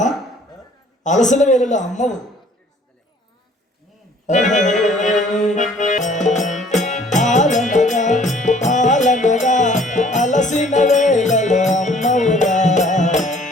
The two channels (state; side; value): normal; both; correlation 0.56